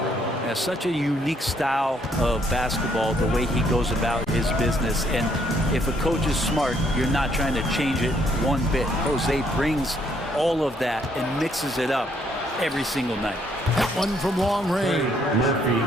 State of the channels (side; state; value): both; normal; correlation 0.69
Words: Has such a unique style of basketball, the way he goes about his business. And if a coach is smart, you're not trying to change it one bit. Jose brings all of that and mixes it up every single night. That one from long range.